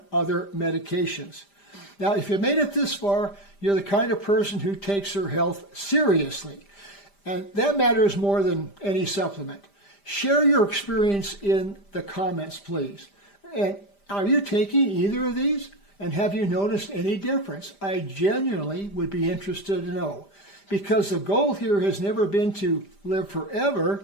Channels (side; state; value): right; late; 5.0 ms